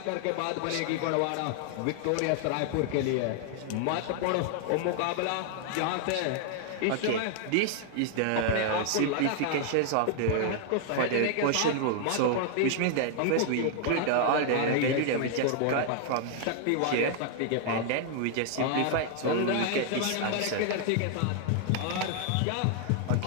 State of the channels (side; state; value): both; different; correlation 0.00